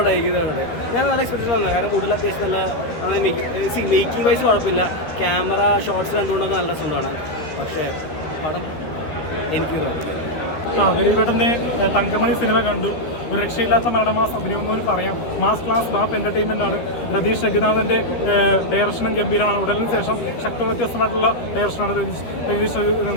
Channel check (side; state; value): right; late; 13 ms